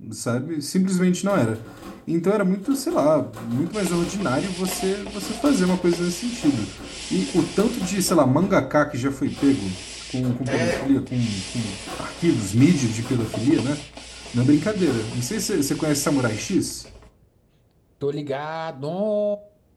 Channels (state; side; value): identical; both; correlation 1.00